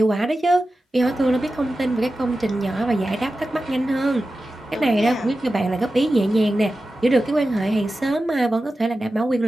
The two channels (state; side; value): normal; both; correlation 0.93